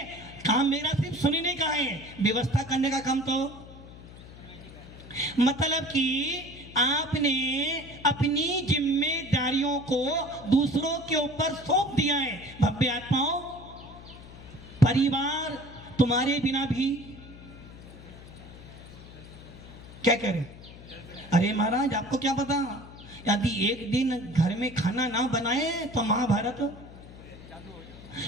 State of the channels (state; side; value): noise; left; hum, 17 dB below the sound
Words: काम मेरा सिर्फ सुनने का है, व्यवस्था करने का काम तो, मतलब कि आपने अपनी जिम्मेदारियों को दूसरों के ऊपर सौंप दिया है। भव्य आत्माओं, परिवार तुम्हारे बिना भी क्या करें? अरे महाराज आपको क्या पता, यदि एक दिन घर में खाना ना बनाए तो महाभारत,